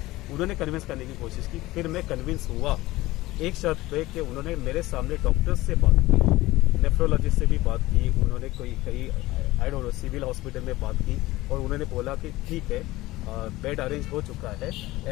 उन्होंने कन्विंस करने की कोशिश की। फिर मैं कन्विंस हुआ एक शर्त पे कि उन्होंने मेरे सामने डॉक्टर्स से बात की, नेफ्रोलॉजिस्ट से भी बात की, उन्होंने कई I don't know civil hospital में बात की, और उन्होंने बोला कि ठीक है, बेड अरेंज हो चुका है,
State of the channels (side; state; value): right; quieter; 18.3 dB